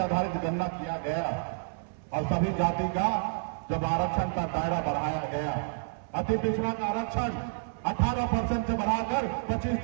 गणना किया गया और सभी जाति का जब आरक्षण का दायरा बढ़ाया गया, अति पिछड़ा का आरक्षण 18% से बढ़ाकर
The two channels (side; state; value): left; silent; 58 dB below the other